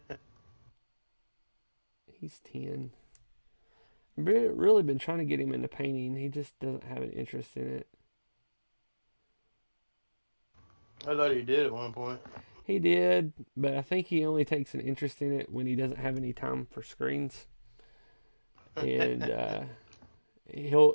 He's 10. I've really been trying to get him into painting. He just doesn't have an interest in it. I thought he did at one point. He did, but I think he only takes an interest in it when he doesn't have any time for screens. And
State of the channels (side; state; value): both; inverted; correlation -1.00